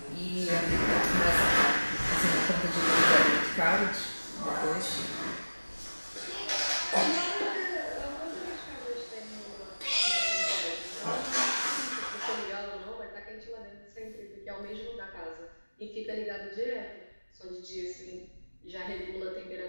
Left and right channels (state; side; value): inverted; both; correlation -1.00